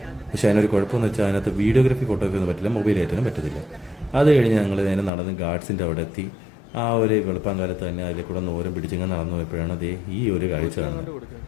പക്ഷേ അതിനൊരു കുഴപ്പമെന്ന് വെച്ചാൽ അതിനകത്ത് വീഡിയോഗ്രാഫി ഫോട്ടോഗ്രാഫി ഒന്നും പറ്റില്ല, മൊബൈൽ ആയിട്ടൊന്നും പറ്റത്തില്ല. അത് കഴിഞ്ഞ് ഞങ്ങൾ നേരെ നടന്ന് ഗാർഡ്സിൻ്റെ അവിടെ എത്തി. ആ ഒരു വെളുപ്പാങ്കാലത്ത് തന്നെ അതിലെ കൂടെ ഓരം പിടിച്ചിങ്ങനെ നടന്നു പോയപ്പോഴാണ് ഈ ഒരു കാഴ്ച കാണുന്നത്.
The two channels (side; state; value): right; drops out; at 5.1 s